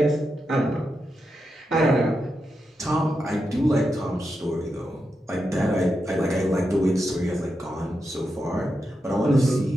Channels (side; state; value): both; normal; correlation 0.87